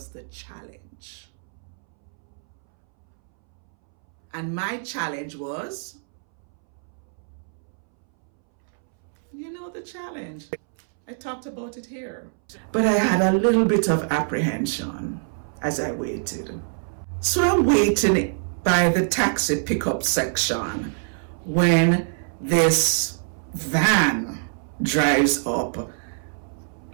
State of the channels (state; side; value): silent; left; 62 dB below the other